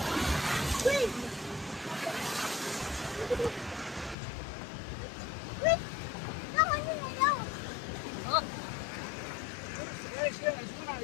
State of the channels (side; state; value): right; drops out; at 4.2 s